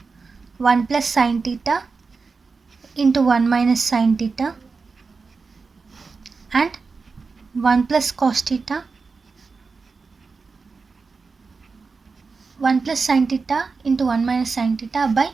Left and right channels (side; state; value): left; quieter; 4.5 dB